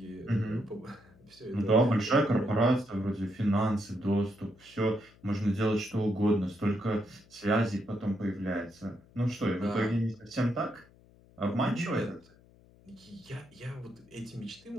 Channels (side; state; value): left; noise; hum, 27 dB below the sound